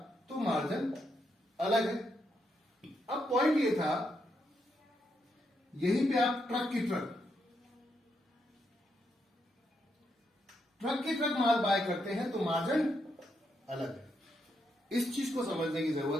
तो मार्जिन अलग है। अब पॉइंट ये था, यहीं पे आप ट्रक की ट्रक माल बाय करते हैं तो मार्जिन अलग है। इस चीज को समझने की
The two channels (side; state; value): both; normal; correlation 0.80